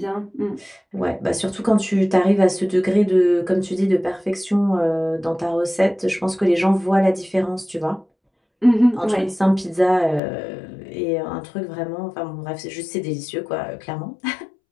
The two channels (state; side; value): drops out; right; at 10.2 s